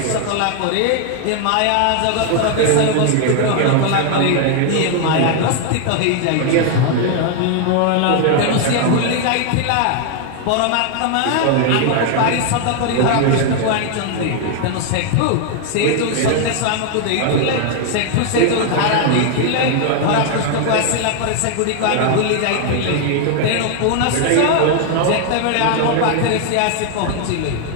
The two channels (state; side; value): different; both; correlation 0.00